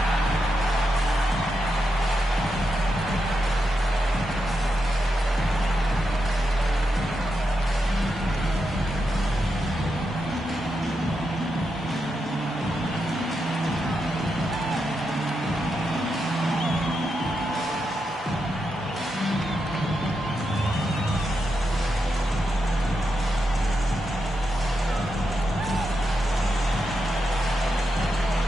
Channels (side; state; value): both; normal; correlation 0.85